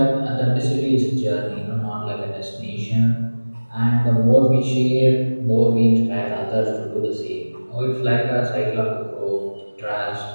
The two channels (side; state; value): both; inverted; correlation -1.00